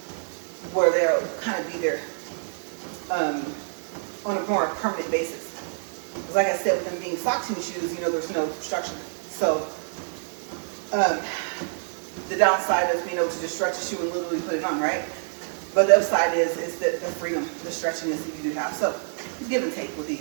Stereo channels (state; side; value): silent; left; digital silence